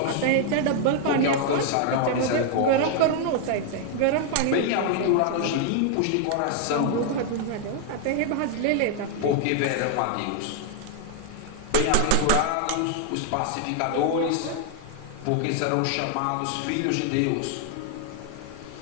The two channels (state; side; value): different; both; correlation 0.00